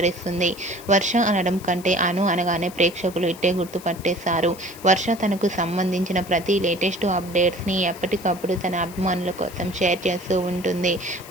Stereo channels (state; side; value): noise; left; hiss, 18 dB below the sound